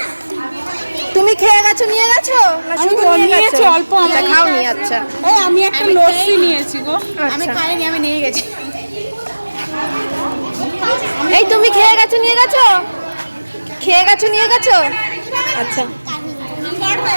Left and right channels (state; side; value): inverted; both; correlation -1.00